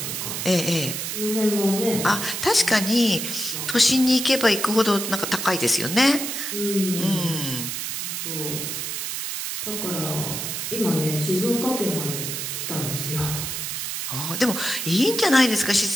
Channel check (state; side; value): noise; right; hiss, 4 dB below the sound